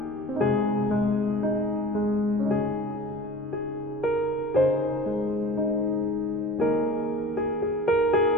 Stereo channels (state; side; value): normal; both; correlation 0.39